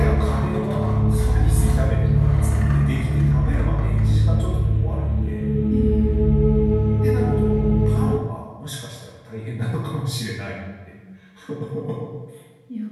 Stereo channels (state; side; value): identical; both; correlation 1.00